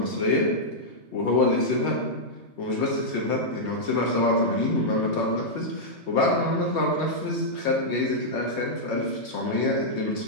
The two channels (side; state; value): left; late; 3.2 ms